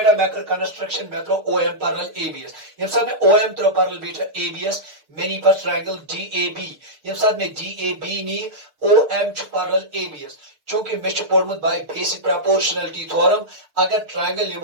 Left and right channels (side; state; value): left; late; 6.7 ms